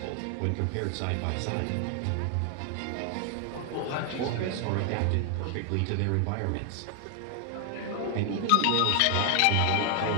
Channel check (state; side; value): different; both; correlation 0.00